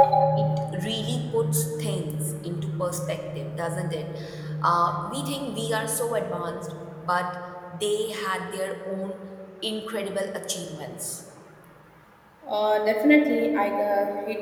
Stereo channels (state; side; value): identical; both; correlation 1.00